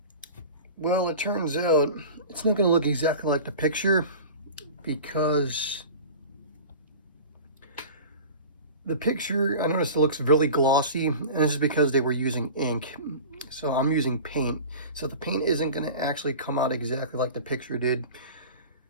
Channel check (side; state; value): both; inverted; correlation -0.36